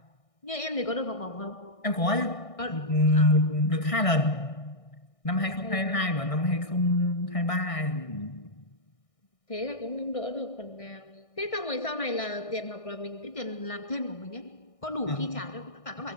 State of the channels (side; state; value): right; late; 1.6 ms